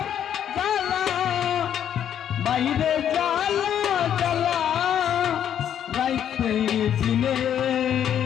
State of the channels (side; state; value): right; quieter; 9.6 dB